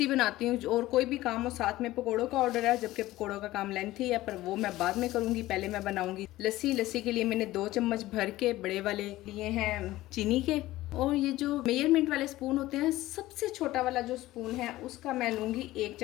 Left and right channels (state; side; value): quieter; right; 16.7 dB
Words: बनाती हूँ, और कोई भी काम हो। साथ में पकौड़ों का ऑर्डर है, जबकि पकौड़ों का काम लेंथी है, पर वो मैं बाद में करूंगी, पहले मैं बनाऊंगी लस्सी। लस्सी के लिए मैंने 2 चम्मच भर के बड़े वाले लिए हैं चीनी के, और ये जो मेजरमेंट वाले स्पून होते हैं, सबसे छोटा वाला जो स्पून है उसका मैं लूंगी 1